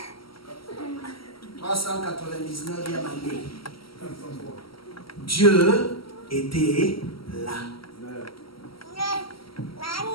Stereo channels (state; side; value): late; right; 0.75 ms